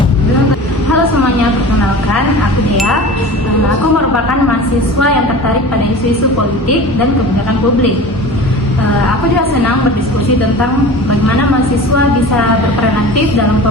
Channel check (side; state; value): both; normal; correlation 0.36